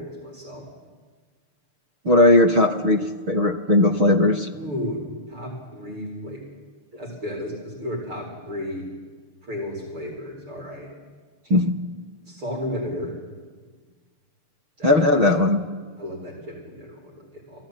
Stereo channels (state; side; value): late; left; 6.7 ms